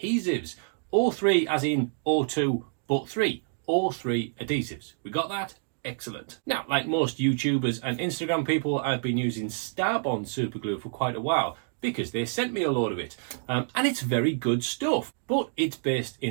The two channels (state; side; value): silent; left; digital silence